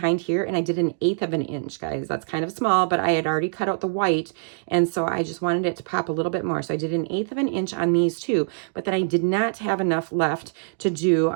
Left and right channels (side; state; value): left; silent; digital silence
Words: here and I did 1/8 of an inch, guys. That's kind of small, but I had already cut out the white. And so I just wanted it to pop a little bit more. So I did 1/8 of an inch on these two, but then I did not have enough left to do